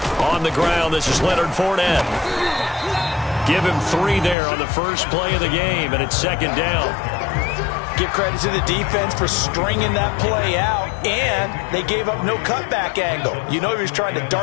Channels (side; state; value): right; drops out; at 4.4 s